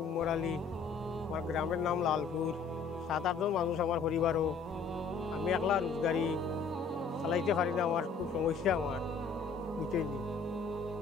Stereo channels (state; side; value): quieter; right; 4.9 dB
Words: উমর আলী, আমার গ্রামের নাম লালপুর। 7-8 জন মানুষ আমার পরিবারও। আমি একলা রোজগারি চালাইতে পারি না, আমার খুব সমস্যা আমার বুঝতেই নি।